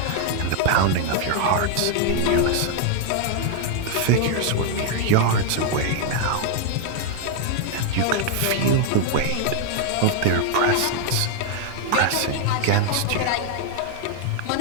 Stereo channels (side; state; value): both; different; correlation 0.00